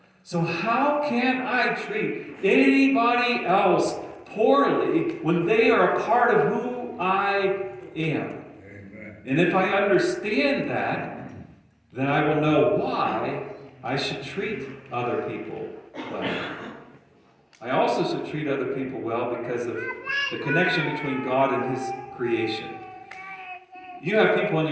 So how can I treat anybody else poorly when they are a part of who I am? Amen. And if I understand that, then I will know why I should treat other people well. I also should treat other people well because of the connection between God and his creation. You have people in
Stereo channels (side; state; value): both; identical; correlation 1.00